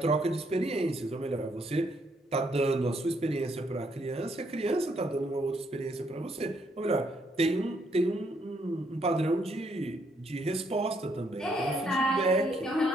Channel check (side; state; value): both; normal; correlation 0.72